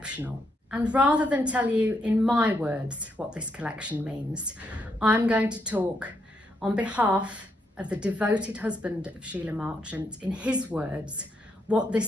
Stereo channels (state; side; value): normal; both; correlation 0.78